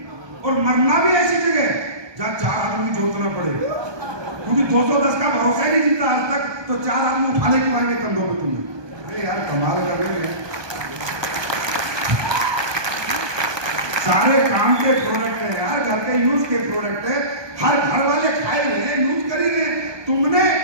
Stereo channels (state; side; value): late; left; 1.2 ms